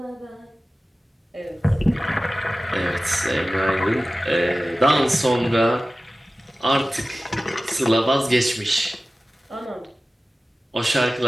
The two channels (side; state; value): both; normal; correlation 0.96